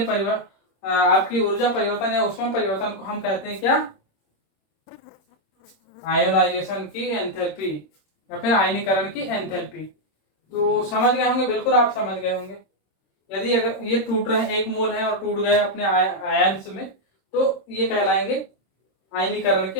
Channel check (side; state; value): right; late; 26 ms